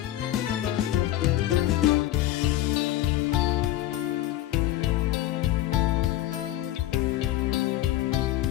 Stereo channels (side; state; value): right; quieter; 14.0 dB